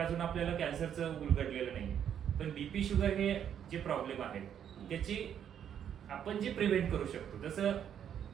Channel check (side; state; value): left; quieter; 9.1 dB